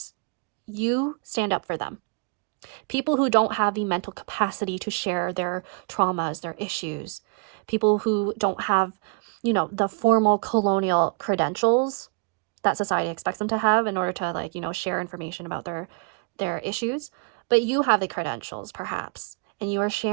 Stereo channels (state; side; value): quieter; left; 33.0 dB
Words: You stand up for them. People who don't have the mental capacity to share their traumas, their issues. People who don't have, you know, the formal colonial credentials that society expects them to have in order to, like, you know, share information about their issues. But you have the credentials, perhaps, and you are